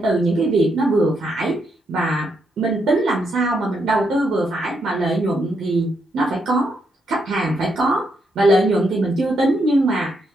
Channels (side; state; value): both; normal; correlation 0.78